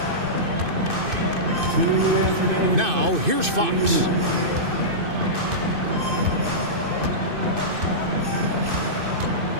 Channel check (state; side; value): late; left; 2.6 ms